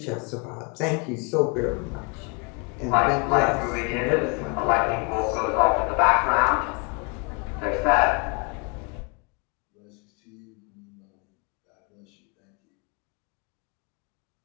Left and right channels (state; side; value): quieter; right; 32.7 dB